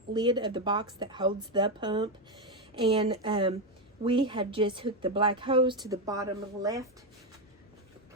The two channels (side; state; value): both; normal; correlation 0.08